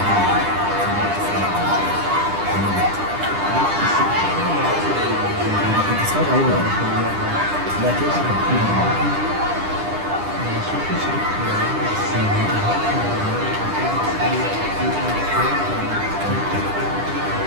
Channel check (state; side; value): late; left; 10 ms